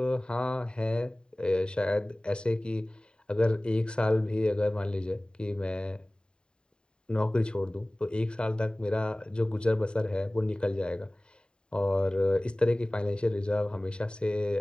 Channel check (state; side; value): late; right; 0.049 ms